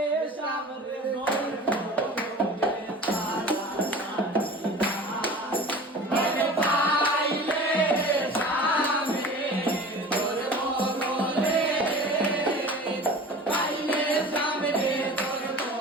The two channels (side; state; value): both; normal; correlation 0.39